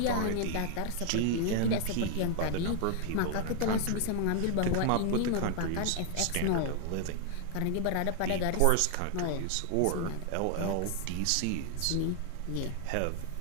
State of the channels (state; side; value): different; both; correlation 0.00